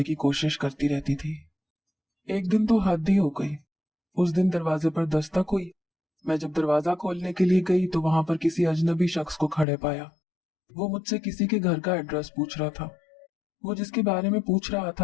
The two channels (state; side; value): drops out; right; at 9.7 s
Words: की कोशिश करती रहती थी। एक दिन तो हद ही हो गई। उस दिन दरवाजे पर दस्तक हुई। मैं जब दरवाजा खोलने के लिए गई तो वहां पर किसी अजनबी शख्स को खड़े पाया। वो मुझसे किसी के घर का एड्रेस पूछ रहा था। वो जिसके बारे में पूछ रहा